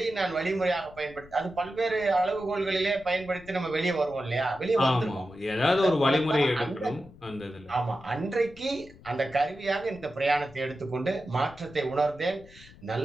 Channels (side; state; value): left; noise; rumble, 22 dB below the sound